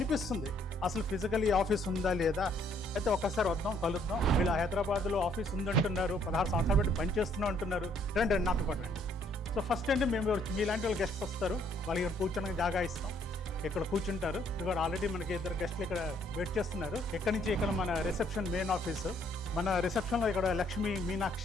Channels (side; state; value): both; normal; correlation 0.66